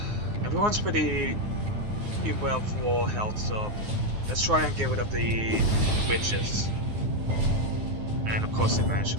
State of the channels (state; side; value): late; left; 9.6 ms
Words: everyone's pretty well for health. So let's try and get rid of the witches. And of course, they managed